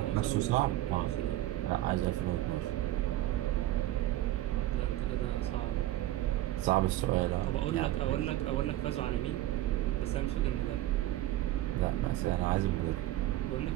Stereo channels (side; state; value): left; quieter; 15.0 dB